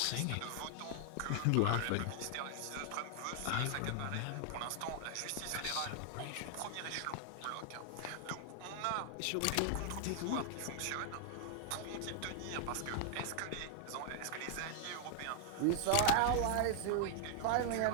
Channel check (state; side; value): different; both; correlation 0.00